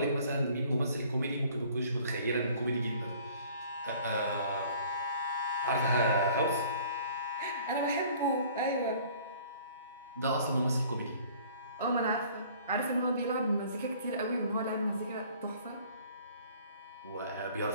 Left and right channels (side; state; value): both; inverted; correlation -0.53